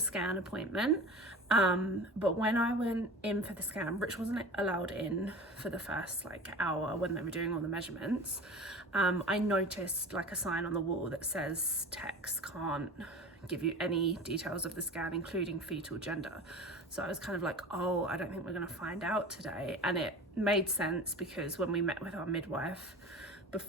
appointment, but when I went in for the scan, Rich wasn't allowed in for the first like hour when they were doing all the measurements. I noticed like a sign on the wall that says techs can't give you any details of the scan, including fetal gender. So I was kind of like, oh, I don't think we're going to find out today. And it made sense because when we met with our midwife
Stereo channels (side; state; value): both; normal; correlation 0.36